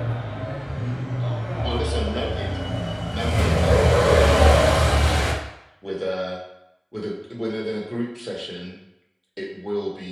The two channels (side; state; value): both; identical; correlation 1.00